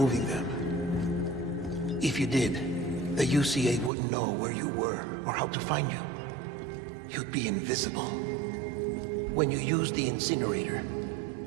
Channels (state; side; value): drops out; left; at 3.9 s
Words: them. If you did, the UCA wouldn't know where you were or how to find you. You'd be invisible. When you use the incinerator,